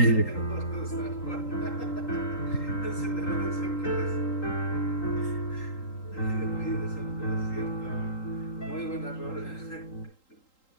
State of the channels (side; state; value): right; late; 3.8 ms